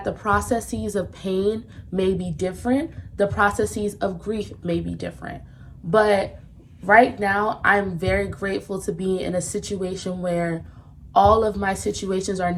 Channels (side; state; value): both; identical; correlation 1.00